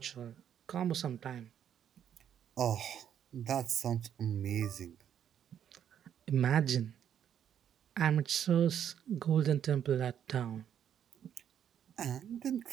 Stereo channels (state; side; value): quieter; left; 9.4 dB